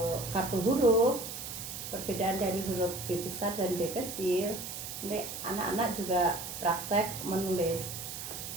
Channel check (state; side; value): noise; right; hiss, 7 dB below the sound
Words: kartu huruf, perbedaan dari huruf B besar dan B kecil, nanti anak-anak juga praktek menulis